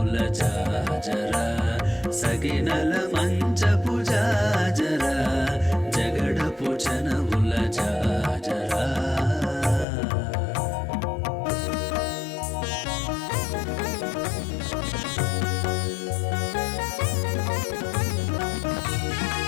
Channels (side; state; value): right; drops out; at 9.9 s